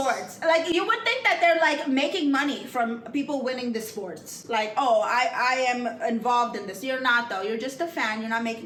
Like, you would think that they're like making money from people winning the sports. Like, oh, I am involved in this. You're not though. You're just a fan. You're not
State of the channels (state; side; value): identical; both; correlation 1.00